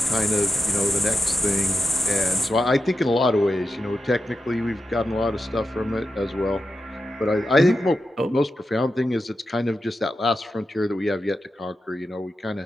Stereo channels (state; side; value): normal; both; correlation 0.88